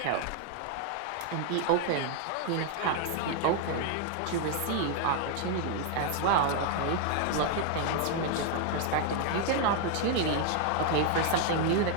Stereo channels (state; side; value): different; both; correlation 0.00